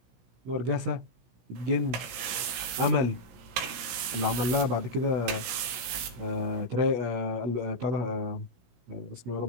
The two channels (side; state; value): left; late; 16 ms